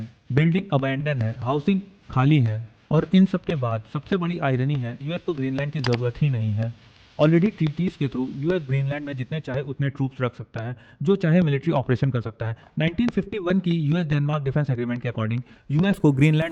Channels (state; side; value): identical; both; correlation 1.00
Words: बिल्डिंग अबैंडन है, हाउसिंग खाली है। और इन सब के बाद सबसे बड़ी आयरनी है, यूएस को ग्रीनलैंड की जरूरत ही नहीं है। ऑलरेडी ट्रीटीज के थ्रू यूएस ग्रीनलैंड में जितने चाहे उतने ट्रूप्स रख सकता है, जो चाहे मिलिट्री ऑपरेशन कर सकता है। 1951 की यूएस डेनमार्क डिफेंस एग्रीमेंट के अकॉर्डिंग यूएस को